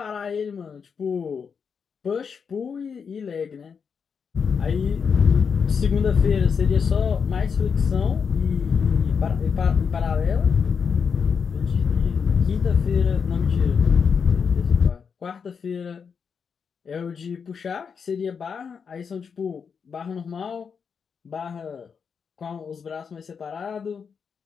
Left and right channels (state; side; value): quieter; right; 6.3 dB